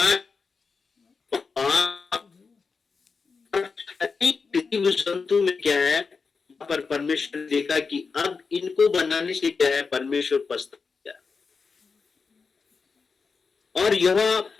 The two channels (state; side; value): quieter; right; 4.9 dB